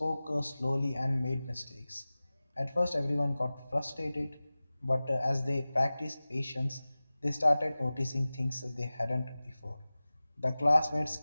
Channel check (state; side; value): inverted; both; correlation -0.97